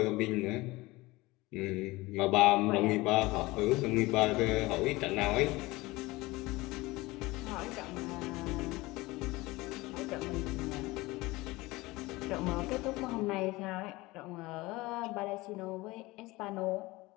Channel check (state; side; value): quieter; right; 21.0 dB